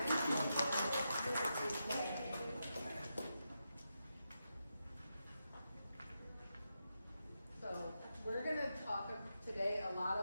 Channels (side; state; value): both; inverted; correlation -0.87